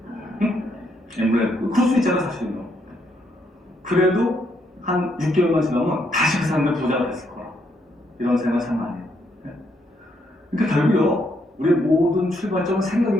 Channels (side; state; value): both; normal; correlation 0.75